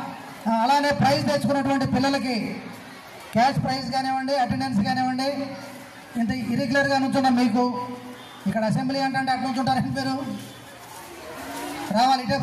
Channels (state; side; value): identical; both; correlation 1.00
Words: అలానే ప్రైజ్ తెచ్చుకున్నటువంటి పిల్లలకి క్యాష్ ప్రైజ్ కానివ్వండి, అటెండెన్స్ కానివ్వండి. ఇంత ఇరెగ్యులర్గా నుంచున్నాం మీకు ఇక్కడ అసెంబ్లీ అంటే అటు నుంచుంటారని పేరు రావాలి, ఇటే